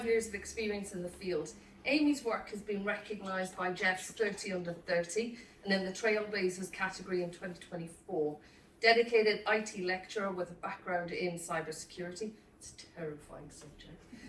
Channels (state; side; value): identical; both; correlation 1.00